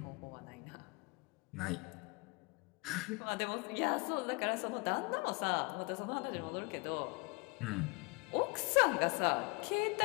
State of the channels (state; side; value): quieter; right; 28.8 dB